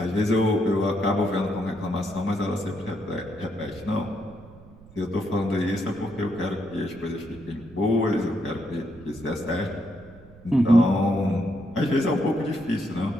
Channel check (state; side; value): noise; right; rumble, 21 dB below the sound